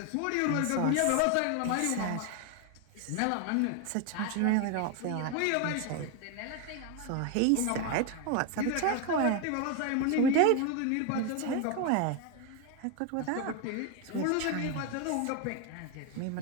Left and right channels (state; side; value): different; both; correlation 0.01